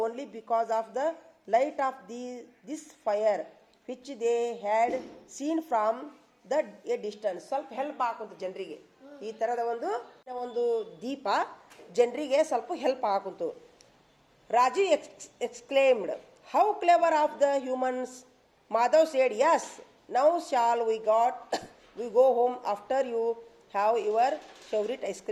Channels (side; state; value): both; identical; correlation 1.00